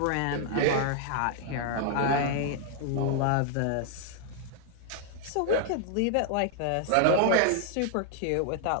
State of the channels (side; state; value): both; different; correlation 0.00